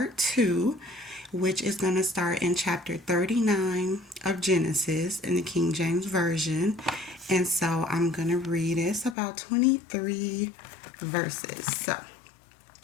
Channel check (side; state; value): right; drops out; at 9.2 s